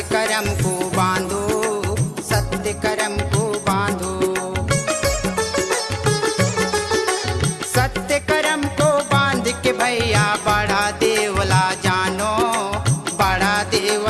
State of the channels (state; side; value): identical; both; correlation 1.00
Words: कर्म को बांधो, सत्य कर्म को बांधो। सत्य कर्म को बांध के भैया बड़ा देवला जानो, बड़ा